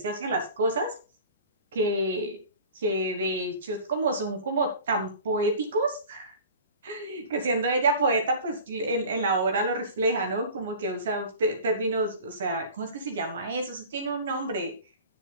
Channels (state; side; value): inverted; both; correlation -0.40